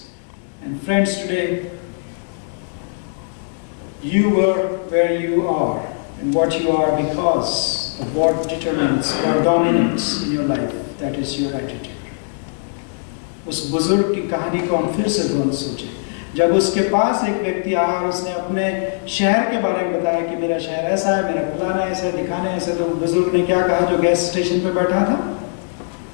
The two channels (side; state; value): right; silent; digital silence